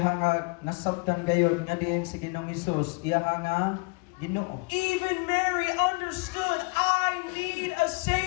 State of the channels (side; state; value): right; quieter; 29.9 dB